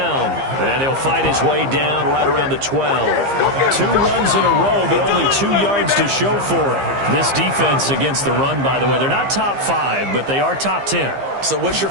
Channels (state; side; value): late; left; 15 ms